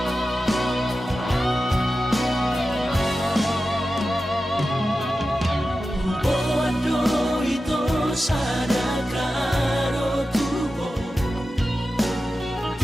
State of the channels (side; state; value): both; normal; correlation 0.93